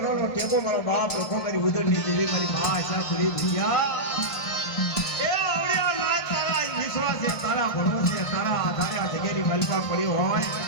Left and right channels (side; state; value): right; late; 1.5 ms